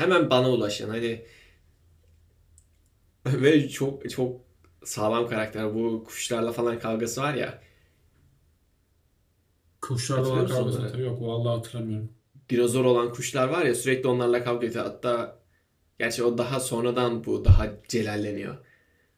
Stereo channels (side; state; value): both; identical; correlation 1.00